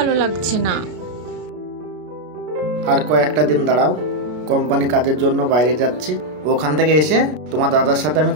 লাগছে না। আর কয়েকটা দিন দাঁড়াও, কোম্পানি কাজের জন্য বাইরে যাচ্ছি, ওখান থেকে এসে তোমার দাদার সাথে আমি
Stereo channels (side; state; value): left; late; 33 ms